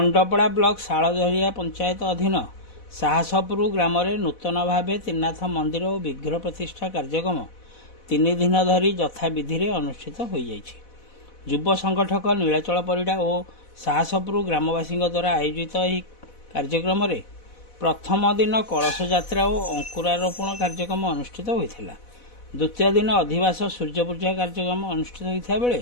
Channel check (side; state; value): right; late; 4.1 ms